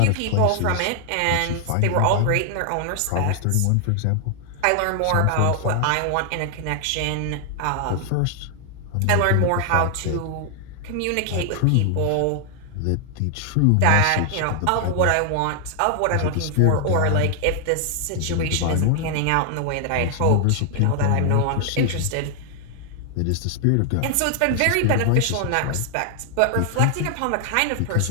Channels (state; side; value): different; both; correlation 0.00